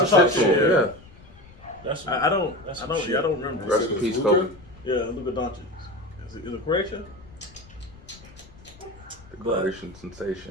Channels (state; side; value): noise; left; rumble, 22 dB below the sound